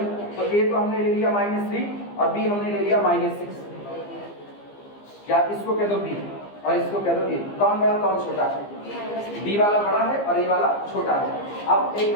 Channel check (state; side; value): late; right; 15 ms